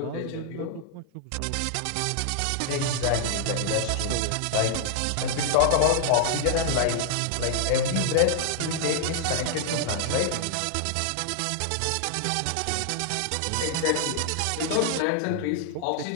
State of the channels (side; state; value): both; different; correlation 0.00